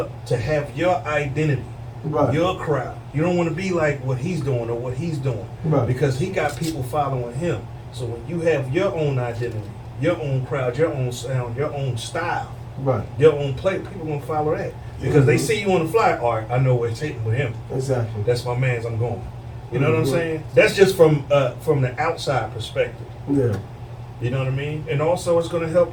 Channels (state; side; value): identical; both; correlation 1.00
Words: to have your identity, Right. your crowd. You don't want to be like what he's doing or what he's doing, Right. because he got people following him. So when you have your own identity, your own crowd, your own sound, your own style, Right. your own play, people gonna follow that because they Mhm. see you on the fly. All right, I know where it's taking with him. Exactly. That's my man's. I'm going. You know what I'm Mhm. saying? That's just from the outside perspective. Yeah. You know what I mean? And also, it's going to